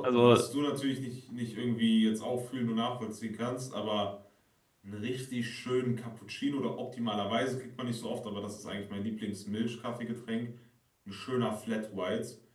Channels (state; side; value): identical; both; correlation 1.00